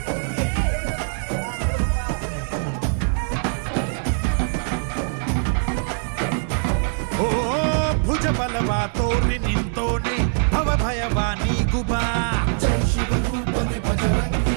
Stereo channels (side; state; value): left; silent; digital silence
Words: ಭುಜ ಬಲವಾ ತೋರಿ ನಿಂತೋನೆ ಭವ ಭಯವಾ ನೀಗುಬಾ ಜೈ ಶಿವ ರೂಪನೆ ಭಜರಂಗಿ